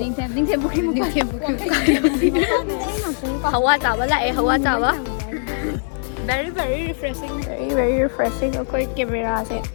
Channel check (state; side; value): silent; right; digital silence